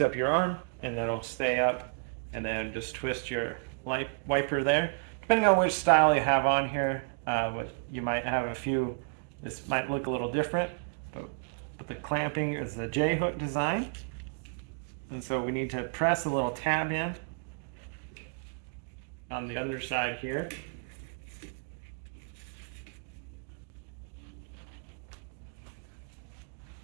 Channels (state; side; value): quieter; left; 38.4 dB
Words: up your arm and then it'll stay up, and then just twist your wiper there. Depending on which style you have on here, you might have a few. This might look a little different, but the clamping is the J-hook design. And so we need to press a little tab in on the underside here.